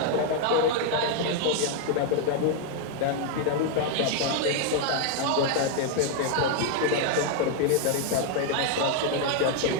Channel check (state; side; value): different; both; correlation 0.00